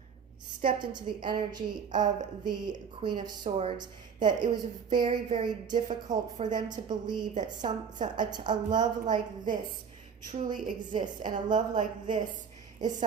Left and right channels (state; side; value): quieter; left; 6.7 dB